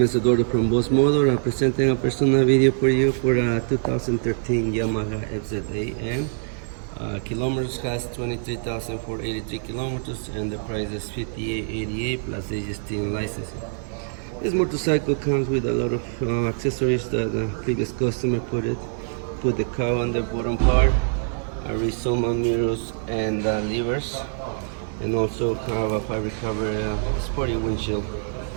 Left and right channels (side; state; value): left; silent; digital silence